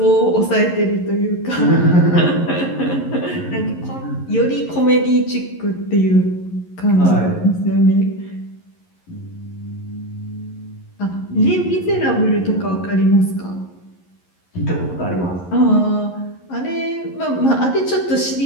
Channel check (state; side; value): late; right; 11 ms